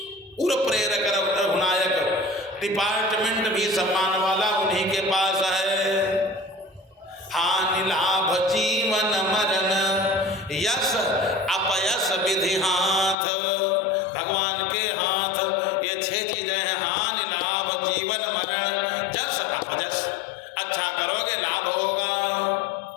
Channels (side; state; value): right; drops out; at 13.2 s